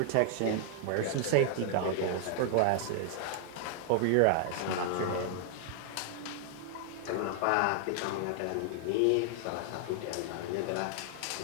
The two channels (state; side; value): different; both; correlation 0.00